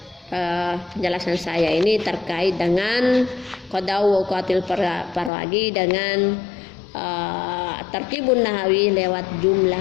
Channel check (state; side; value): drops out; right; at 5.3 s